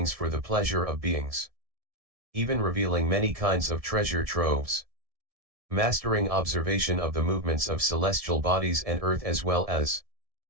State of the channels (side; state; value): left; late; 1.7 ms